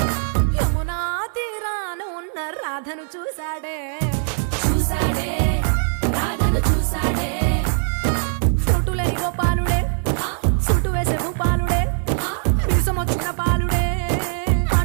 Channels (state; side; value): silent; left; digital silence